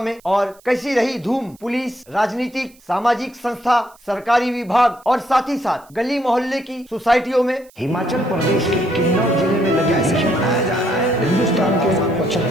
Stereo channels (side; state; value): right; noise; hiss, 29 dB below the sound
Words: में, और कैसी रही धूम पुलिस, राजनीतिक, सामाजिक संस्था, सरकारी विभाग और साथ ही साथ गली मोहल्ले की सोसाइटियों में। हिमाचल प्रदेश के किन्नौर जिले में लगे जश्न मनाया जा रहा है हिंदुस्तान के